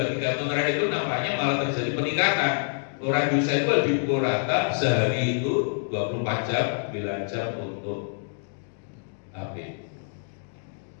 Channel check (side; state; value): right; silent; digital silence